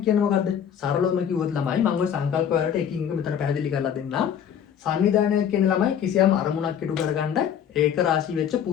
කියන්නේ මොකද්ද? සරලවම කිව්වොත් ළමයි මම ওই සංකල්ප වලට එකින් එක මෙතන පැහැදිලි කරලා දෙන්නම්. සංවිධානයක් කියන්නේ ළමයි කිසියම් අරමුණක් ඉටු කරගන්න ඒක රාශී වෙච්ච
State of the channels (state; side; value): quieter; right; 8.7 dB